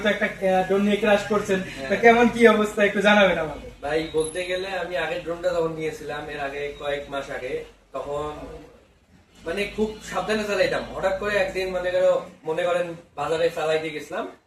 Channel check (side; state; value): both; identical; correlation 1.00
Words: তো একটা ড্রোন নিয়ে ক্রাশ করছেন, তো কেমন কি অবস্থা একটু জানাবেন আমাকে। ভাই বলতে গেলে আমি আগের ড্রোনটা যখন নিয়েছিলাম এর আগে কয়েক মাস আগে, তখন মানে খুব সাবধানে চালাইতাম। হঠাৎ করে একদিন মনে করেন বাজারে চালাইতে গেছিলাম,